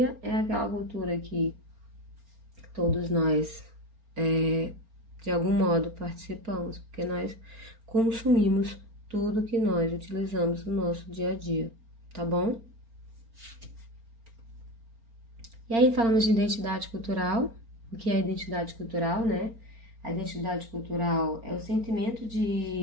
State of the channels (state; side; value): late; left; 4.4 ms